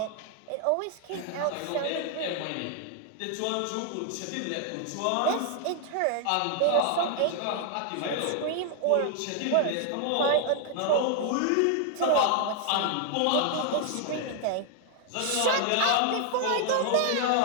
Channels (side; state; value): both; different; correlation 0.00